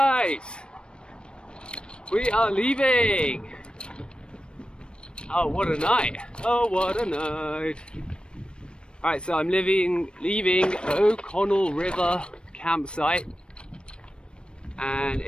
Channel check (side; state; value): right; late; 0.055 ms